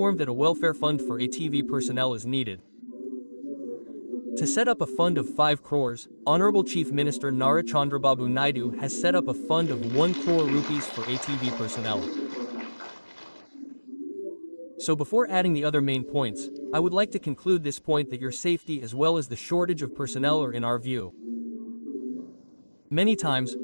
that a welfare fund for ATV personnel is needed. To set up a fund of 5 crores, Honorable Chief Minister Nara Chandrababu Naidu has set up a fund of 1 crore rupees for ATV personnel. So before adding the other main points, I would like to conclude this point that your safety as well as the shortage of personnel are in our view. Many times,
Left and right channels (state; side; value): inverted; both; correlation -1.00